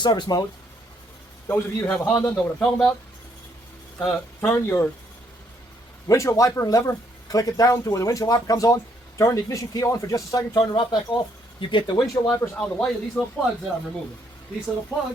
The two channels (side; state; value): both; normal; correlation 0.71